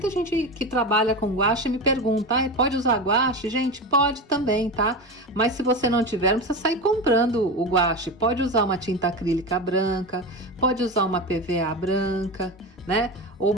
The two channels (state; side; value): normal; both; correlation 0.23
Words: gente que trabalha com guache me pergunta, pode usar guache? Gente, pode também, tá? Mas se você não tiver, não precisa sair comprando o guache. Pode usar uma tinta acrílica branca, pode usar uma PVA branca, né? Ou